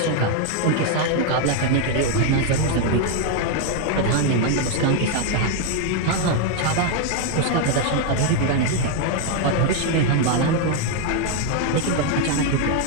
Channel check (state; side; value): different; both; correlation 0.01